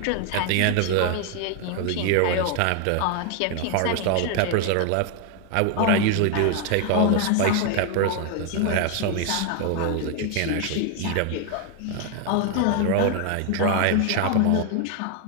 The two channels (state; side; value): different; both; correlation 0.01